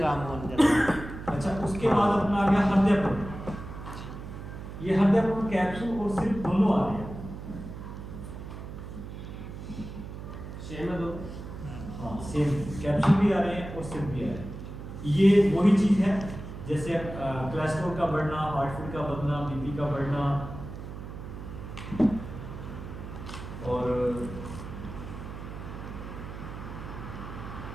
हो जाता। अच्छा उसके बाद अपना आ गया हृदयपुर। ये हृदयपुर कैप्सूल और सिर्फ दोनों आ रहे हैं। सेम है दो? हाँ सेम, कैप्सूल भी आ रहे हैं और सिर्फ भी आ रहे हैं। ये वही चीज है जैसे कोलेस्ट्रॉल का बढ़ना, हार्ट का बढ़ना, बीपी का बढ़ना, और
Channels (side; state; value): right; noise; hum, 10 dB below the sound